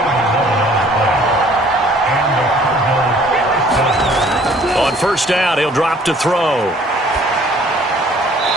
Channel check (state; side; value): normal; both; correlation 0.56